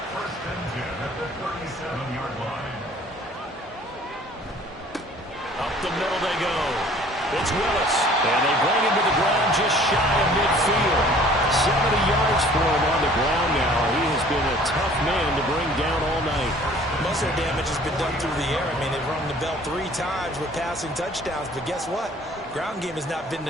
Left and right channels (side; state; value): both; normal; correlation 0.52